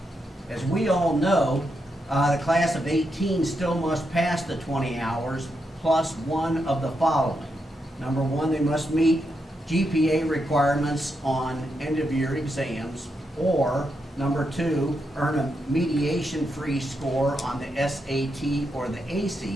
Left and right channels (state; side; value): normal; both; correlation 0.83